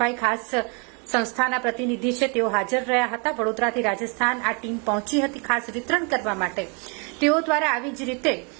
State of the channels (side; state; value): left; quieter; 34.5 dB